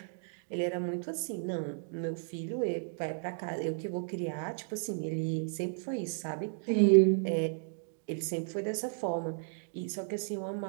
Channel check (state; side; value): silent; left; digital silence